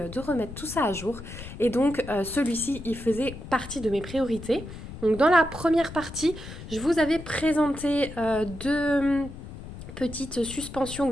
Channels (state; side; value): noise; left; rumble, 12 dB below the sound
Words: de remettre tout ça à jour. Et donc celui-ci, il faisait partie de mes priorités. Donc dans la première partie, je vous avais présenté deux petites suspensions